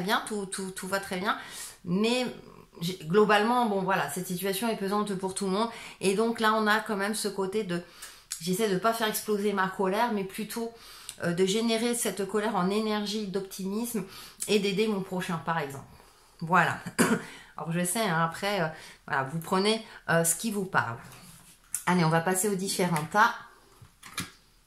tout va très bien, mais globalement, bon voilà, cette situation est pesante pour tout le monde, et donc là, on a quand même ce côté de... J'essaie de ne pas faire exploser ma colère, mais plutôt de générer cette colère en énergie d'optimisme et d'aider mon prochain, par exemple. Voilà. Alors je sais, hein, après, voilà, vous prenez ce qui vous parle. Allez, on va passer aux différents tas.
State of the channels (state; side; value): identical; both; correlation 1.00